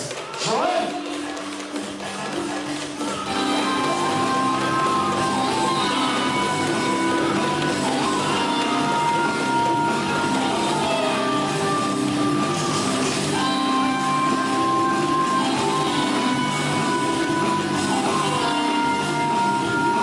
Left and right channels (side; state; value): both; identical; correlation 1.00